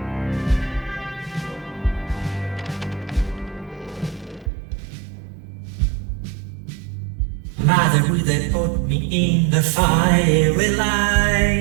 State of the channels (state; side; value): drops out; left; at 4.5 s